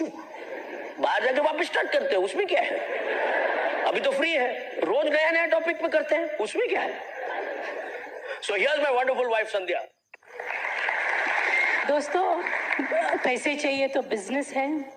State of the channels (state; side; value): identical; both; correlation 1.00